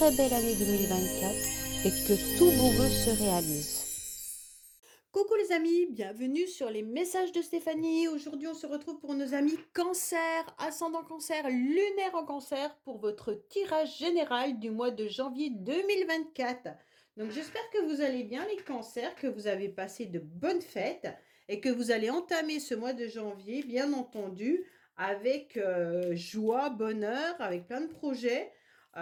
belle année 2024 et que tous vos vœux se réalisent. Coucou les amis, bienvenue sur les messages de Stéphanie. Aujourd'hui, on se retrouve pour nos amis cancer, ascendant cancer, lunaire en cancer pour votre tirage général du mois de janvier 2024. Donc j'espère que vous allez bien les cancers, que vous avez passé de bonnes fêtes et que vous allez entamer ce mois de janvier, bien entendu, avec joie, bonheur, avec plein de projets.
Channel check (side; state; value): both; identical; correlation 1.00